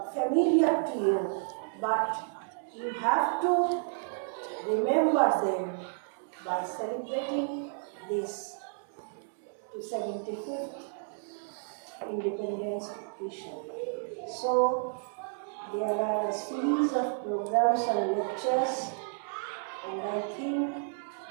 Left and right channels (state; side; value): silent; left; digital silence